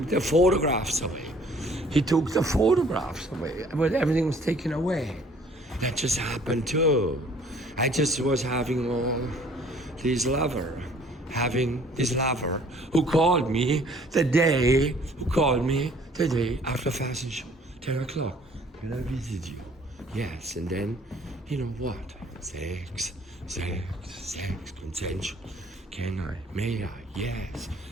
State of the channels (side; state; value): both; normal; correlation 0.56